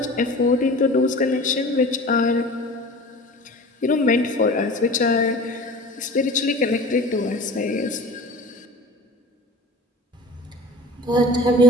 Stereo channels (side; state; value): both; normal; correlation 0.39